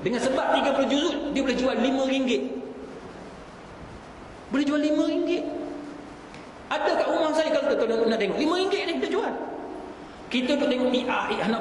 Dengan sebab 30 juzuk, dia boleh jual RM5. Boleh jual RM5. Ada kat rumah saya kalau tuan nak tengok, RM5 ni dia jual. Kita duk tengok ni, nak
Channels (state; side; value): identical; both; correlation 1.00